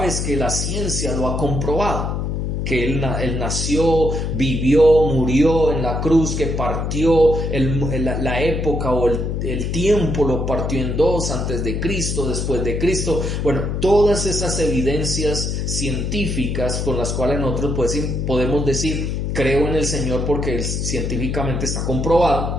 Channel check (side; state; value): left; noise; hum, 1 dB below the sound